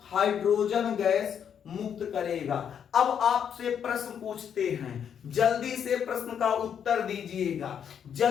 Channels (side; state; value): right; quieter; 8.2 dB